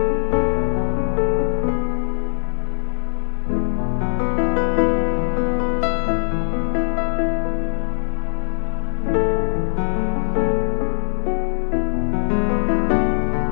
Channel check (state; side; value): silent; right; 59 dB below the other